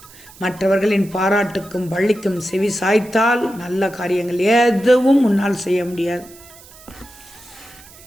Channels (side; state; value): right; noise; hiss, 22 dB below the sound